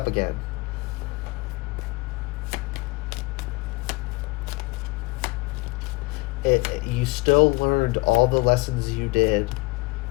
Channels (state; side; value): quieter; right; 24.2 dB